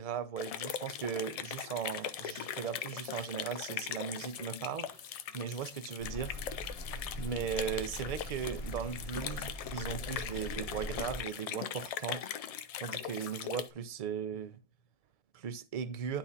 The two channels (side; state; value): right; late; 1.7 ms